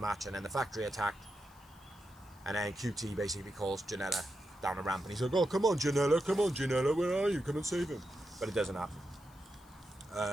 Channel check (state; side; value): noise; left; hiss, 28 dB below the sound